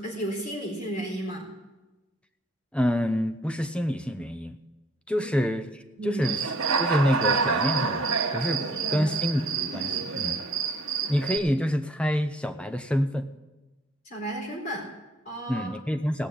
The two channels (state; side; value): normal; both; correlation 0.60